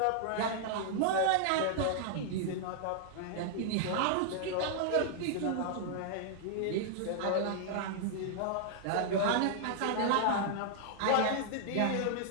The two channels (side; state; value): both; different; correlation -0.01